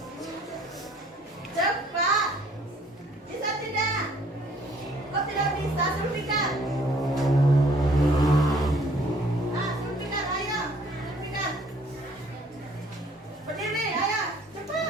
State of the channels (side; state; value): both; normal; correlation 0.59